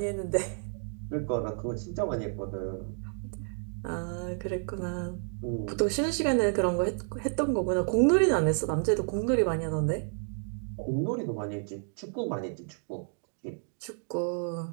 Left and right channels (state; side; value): silent; left; 56 dB below the other